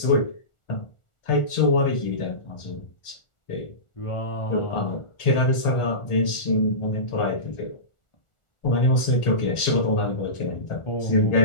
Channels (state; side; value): late; right; 1.4 ms